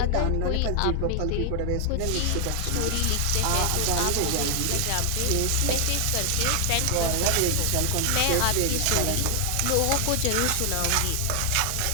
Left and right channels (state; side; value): different; both; correlation 0.00